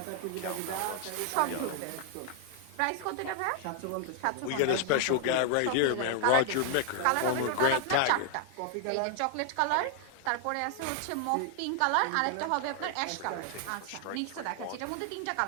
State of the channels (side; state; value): both; different; correlation 0.00